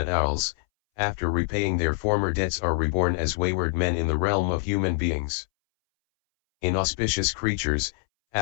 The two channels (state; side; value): silent; right; 62 dB below the other